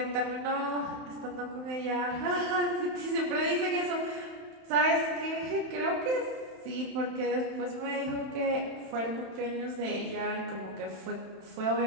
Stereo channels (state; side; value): late; left; 31 ms